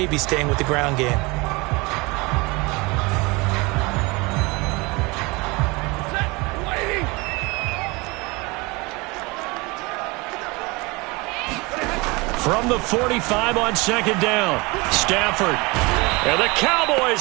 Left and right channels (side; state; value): left; quieter; 25.5 dB